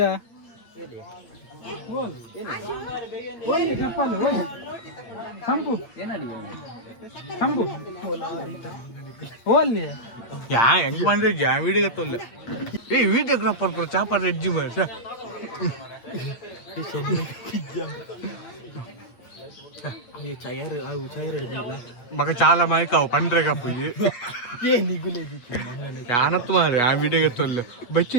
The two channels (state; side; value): late; right; 8.6 ms